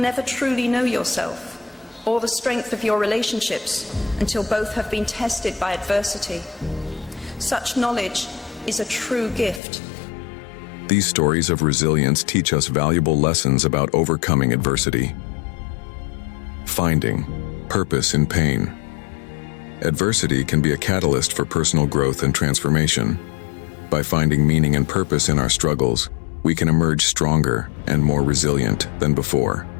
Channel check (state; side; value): drops out; right; at 9.6 s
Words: truly know yourself or the strength of your relationships until both have been tested by adversity. Such knowledge is a true gift. These stories of resilience teach us valuable lessons about overcoming adversity. Finding purpose in pain. Adversity can be a catalyst for personal growth and transformation. By finding meaning and purpose in our struggles, we can emerge stronger and more resilient than before.